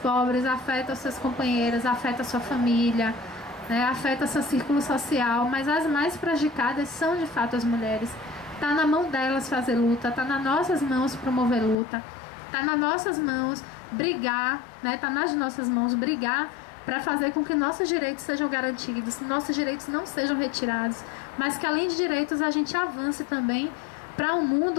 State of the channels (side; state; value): right; drops out; at 11.8 s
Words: pobres, afeta os seus companheiros, afeta a sua família, né? Afeta seu círculo social, mas as mais prejudicadas são de fato as mulheres. Está na mão delas fazer luta, está nas nossas mãos promover luta, está nas nossas mãos brigar, né? Está nas nossas mãos brigar para fazer com que nossos direitos sejam garantidos, nossos direitos não sejam retirados, mas que além de direitos a gente avance também para um